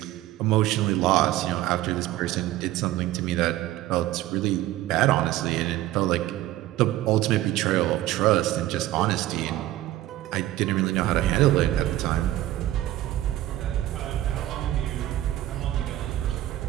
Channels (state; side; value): quieter; left; 14.8 dB